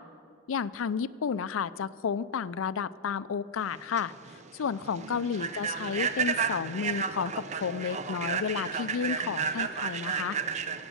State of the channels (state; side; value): normal; both; correlation -0.11